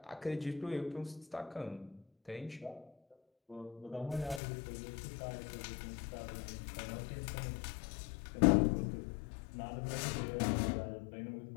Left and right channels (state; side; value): drops out; right; at 4.4 s